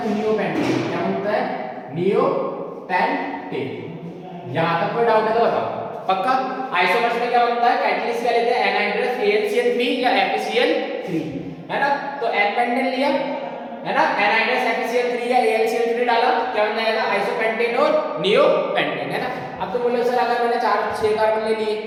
नियोपेंटेन, क्या बोलता है नियोपेंटेन। यहां तक कोई डाउट है तो बताओ पक्का। आइसोमर्स में क्या बनता है कैटलिस्ट क्या लेते हैं एनहाइड्रस AlCl3 या FeCl3, है ना। तो एन पेंटेन लिया, है ना, एनहाइड्रस FeCl3 या AlCl3 डाला, क्या बन जाएगा आइसोपेंटेन और नियोपेंटेन, है ना। अब तो बोलो सर अगर मैंने 6 कार्बन ले लिए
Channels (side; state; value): both; identical; correlation 1.00